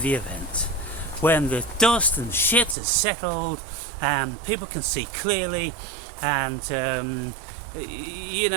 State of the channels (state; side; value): drops out; left; at 2.8 s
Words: event, when the dust and shit has settled and people can see clearly, and you